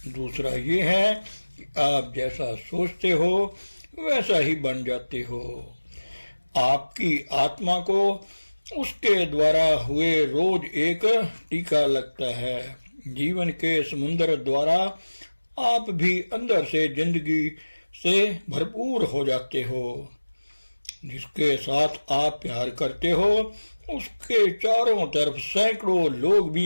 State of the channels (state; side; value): inverted; both; correlation -1.00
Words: दूसरा ये है कि आप जैसा सोचते हो वैसा ही बन जाते हो। आपकी आत्मा को उसके द्वारा हुए रोज एक टीका लगता है। जीवन के समुद्र द्वारा आप भी अंदर से जिंदगी से भरपूर हो जाते हो। जिसके साथ आप प्यार करते हो उसके चारों तरफ सैकड़ों लोग